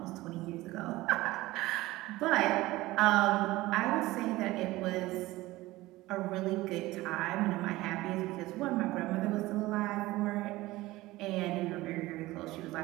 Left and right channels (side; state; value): left; quieter; 18.5 dB